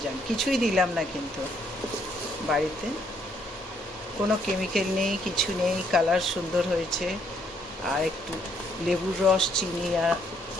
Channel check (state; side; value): normal; both; correlation 0.70